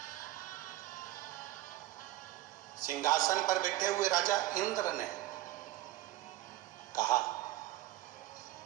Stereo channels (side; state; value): left; quieter; 16.0 dB